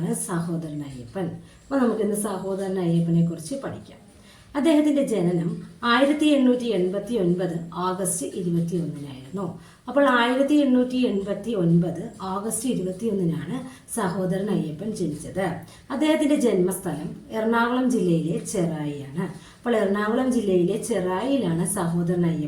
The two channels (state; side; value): identical; both; correlation 1.00